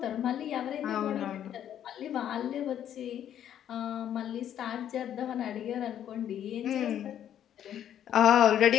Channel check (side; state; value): right; quieter; 10.3 dB